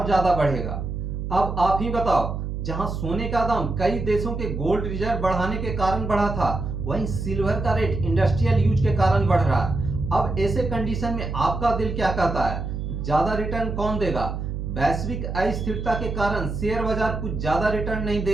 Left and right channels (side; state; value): right; noise; hum, 4 dB below the sound